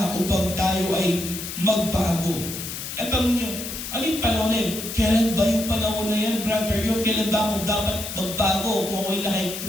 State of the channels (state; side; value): noise; left; hiss, 7 dB below the sound